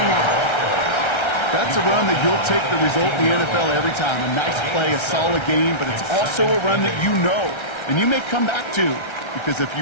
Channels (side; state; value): right; late; 1.3 ms